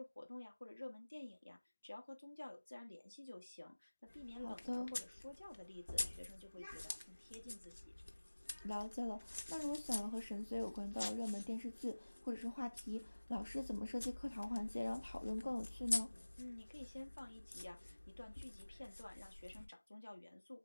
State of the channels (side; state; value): both; inverted; correlation -1.00